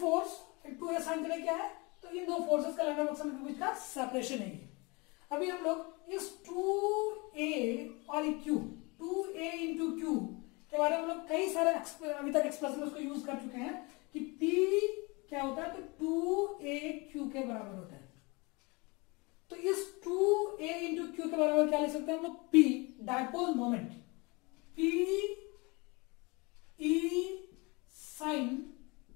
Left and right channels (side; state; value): right; quieter; 27.2 dB